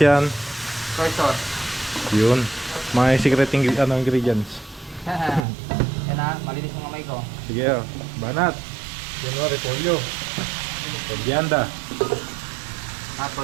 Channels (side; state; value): left; drops out; at 5.5 s